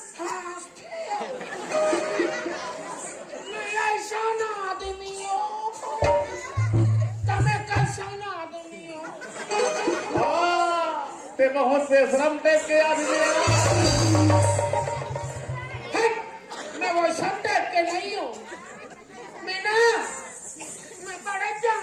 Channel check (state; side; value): identical; both; correlation 1.00